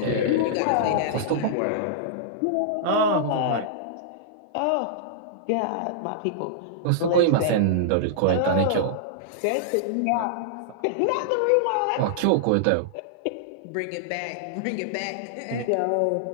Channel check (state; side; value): different; both; correlation -0.02